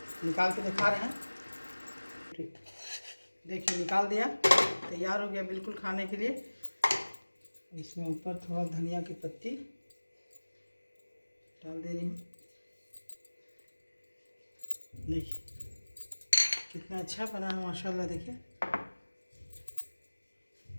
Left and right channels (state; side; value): inverted; both; correlation -1.00